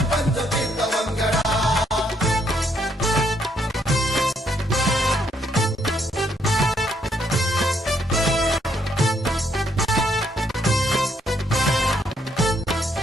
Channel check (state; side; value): normal; both; correlation 0.72